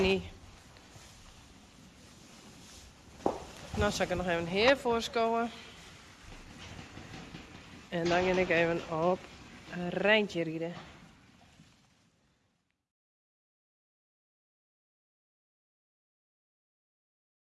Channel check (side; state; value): both; identical; correlation 1.00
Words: Nou zal ik er nog even hier voorschouwen. En dan ga ik even op een Rijntje rijden.